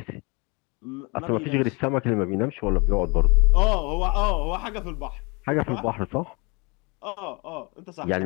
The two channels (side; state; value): right; quieter; 29.2 dB